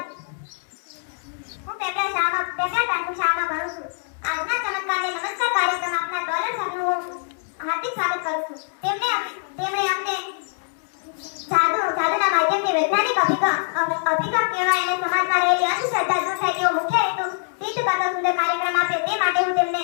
હું પેપર શાળામાં ભણું છું. આજના ચમત્કારને નમસ્કાર કાર્યક્રમ આપના ડોલર સરનું હું હાર્દિક સ્વાગત કરું છું. તેમણે અમને જાદુના માધ્યમથી વૈજ્ઞાનિક અભિગમ કહેવાય અને સમાજમાં રહેલી અંધશ્રદ્ધા દૂર થાય તેવો મુખ્ય હેતુ સિદ્ધ કરતો સુંદર કાર્યક્રમ આપ્યો. તે માટે હું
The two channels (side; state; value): right; silent; 63 dB below the other